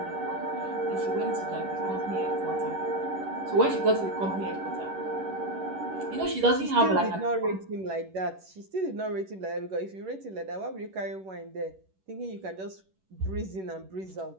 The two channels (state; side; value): late; left; 11 ms